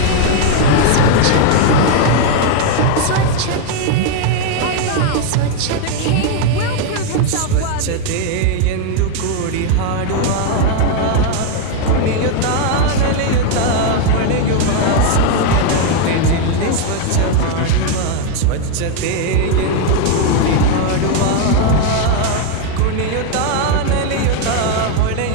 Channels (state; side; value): different; both; correlation 0.01